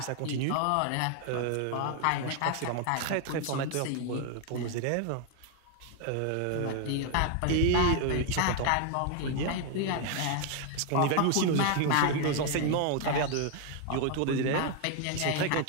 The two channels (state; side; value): different; both; correlation 0.00